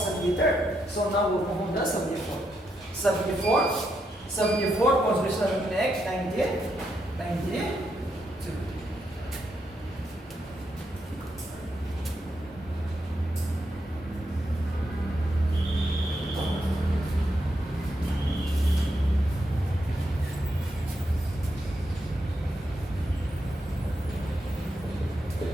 So now we'll move on to the 74th. 74th Constitutional Amendment Act 1992.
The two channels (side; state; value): both; normal; correlation 0.81